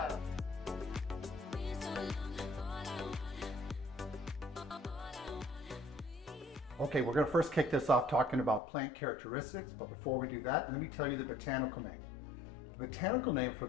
Okay, we're going to first kick this off talking about plant characteristics, but before we do that, let me tell you the botanical name. The botanical name for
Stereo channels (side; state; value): right; drops out; at 8.6 s